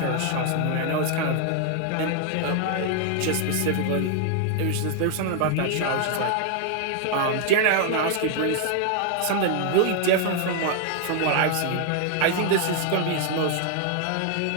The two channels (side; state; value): both; different; correlation 0.00